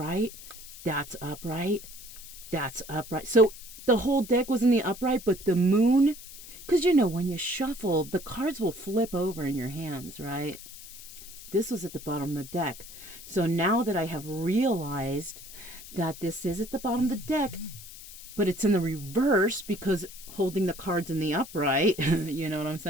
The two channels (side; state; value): left; noise; hiss, 15 dB below the sound